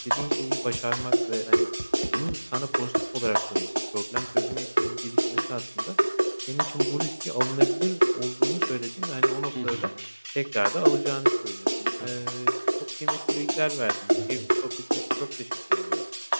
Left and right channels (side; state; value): both; inverted; correlation -1.00